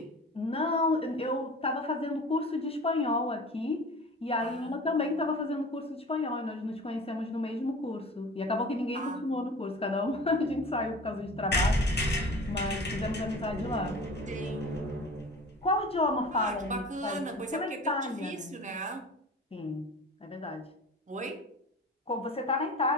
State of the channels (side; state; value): both; normal; correlation 0.39